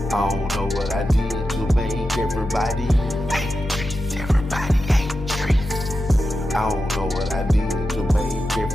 I don't know what I did to make everybody hate Trees. Everybody hate Trees. I don't know what I did to make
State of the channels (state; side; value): normal; both; correlation 0.90